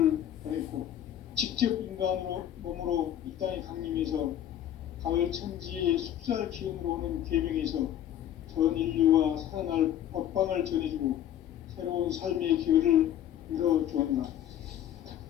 보냈고 직접 인간으로 몸으로 이 땅에 강림해서 가을 천지의 숲살 기운으로 오는 계명에서 전 인류와 살아날 법방을 전해주고 새로운 삶의 기회를 이뤄주었노라.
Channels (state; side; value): quieter; right; 11.0 dB